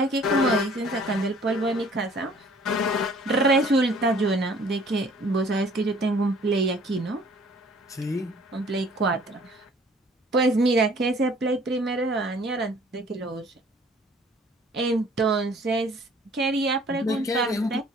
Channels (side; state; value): both; normal; correlation 0.55